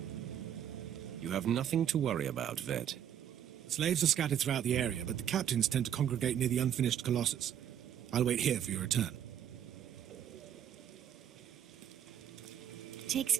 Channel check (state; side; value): quieter; left; 9.7 dB